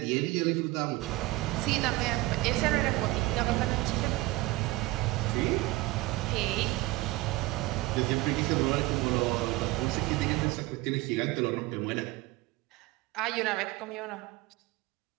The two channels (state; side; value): quieter; left; 19.8 dB